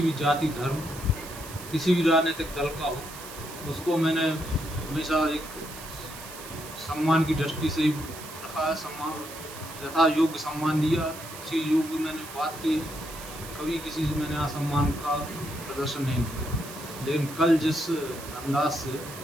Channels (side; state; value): right; noise; hiss, 14 dB below the sound